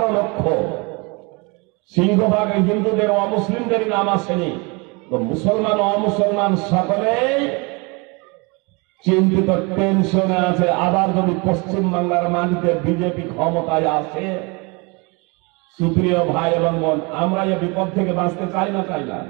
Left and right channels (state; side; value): quieter; left; 29.1 dB